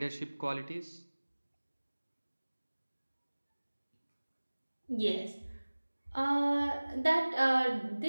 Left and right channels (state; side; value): inverted; both; correlation -1.00